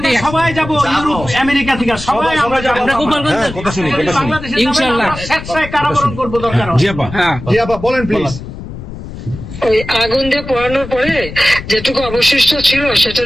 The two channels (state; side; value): noise; left; rumble, 11 dB below the sound